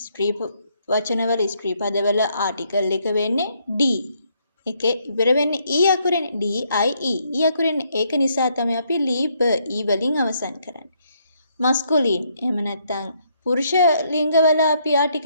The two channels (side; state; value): both; inverted; correlation -0.72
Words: ස්ත්‍රී වචනවල ස්ත්‍රී පදවල ආටිකල් එක වෙන්නේ D. එකේ ඉවර වෙන්නේ E අකුරෙනේ D I E. E අකුරෙනේ. ඒක නිසා තමයි අපි ලීබර් E වලින් අවසන් කරන්නේ. මස්කුලින් එහෙම නැත්නම් පුරුෂ ලිංගවල අපි